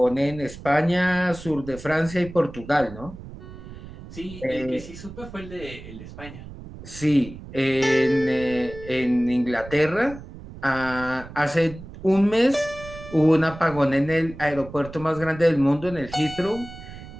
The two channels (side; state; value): right; noise; rumble, 15 dB below the sound